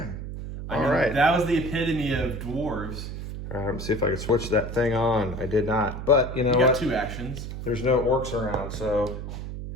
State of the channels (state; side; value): noise; right; hum, 7 dB below the sound